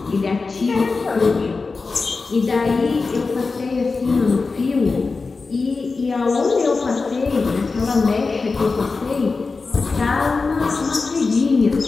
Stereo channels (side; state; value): right; quieter; 4.1 dB